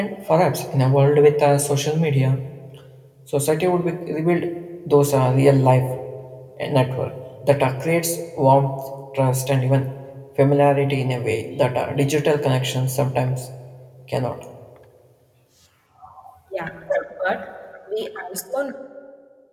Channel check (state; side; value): identical; both; correlation 1.00